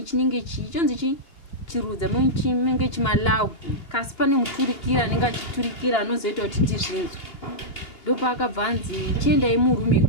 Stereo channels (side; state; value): right; late; 2.8 ms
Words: chionzi chirudza chinenge chimalawu kasi pane muturikira anenge achiturikira anozoita kuti tizvinzwe. Ndopa akabva anzi chiendai murumu